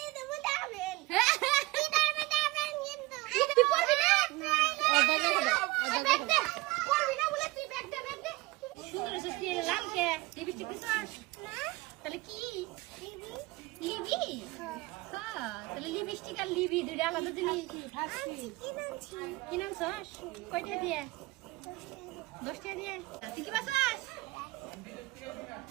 তুই পড়বি না? ব্যাগ দে। পড়বি না বলে তুই ব্যাগ দে, ব্যাগ দে। সুন্দর আছে লাল কে লিপস্টিক দিছস না? তাহলে কি লিবি? হ্যাঁ তাহলে লিপস্টিক আর লিবি দুইটা আলাদা জিনিস। কি নাম সস? কয়টা দিয়ে? 10 টাকা দিয়ে। তুই কি বাসাস?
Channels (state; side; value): quieter; left; 21.6 dB